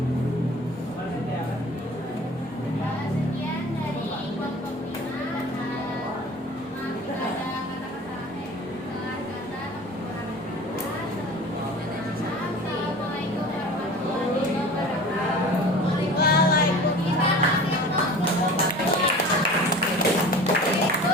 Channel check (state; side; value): noise; left; rumble, 29 dB below the sound